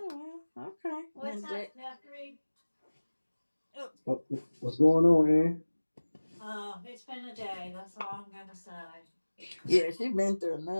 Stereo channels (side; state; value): both; inverted; correlation -1.00